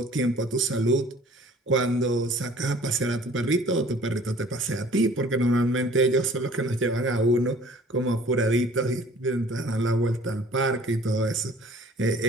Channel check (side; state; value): both; normal; correlation 0.51